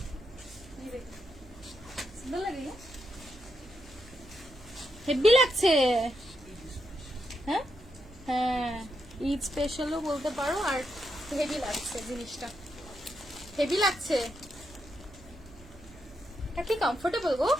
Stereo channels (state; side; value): noise; right; hum, 21 dB below the sound